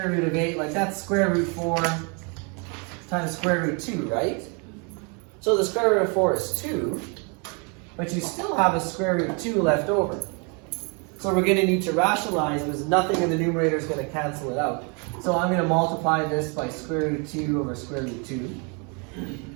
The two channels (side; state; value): left; quieter; 34.5 dB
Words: root of 8, like that's square root 4 times square root 2, right? So the square root of 4 is 2, but you still have a square root of 2 left over. So we're going to need to rationalize because nothing in the numerator is going to cancel it out. So I'm going to multiply this by square root 2 over square root 2.